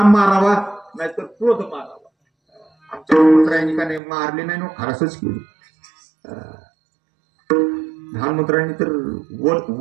मारावा नाहीतर क्रोध मारावा. आमच्या मंत्र्यांनी का नाही मारले नाही, खारसच केली. लहान मंत्र्यांनी तर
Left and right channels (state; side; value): drops out; left; at 4.0 s